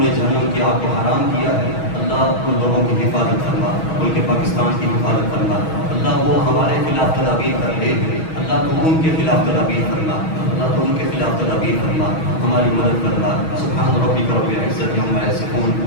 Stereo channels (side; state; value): right; late; 6.3 ms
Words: جہنم کی آگ کو حرام کیا ہے. اللہ ان لوگوں کی حفاظت فرما، ملک پاکستان کی حفاظت فرما. اللہ وہ ہمارے خلاف تدابیر کر رہے ہیں، اللہ تو ان کے خلاف تدابیر فرما. اللہ تو ان کے خلاف تدابیر فرما، ہماری مدد فرما. سبحان ربک رب العزت عما یصفون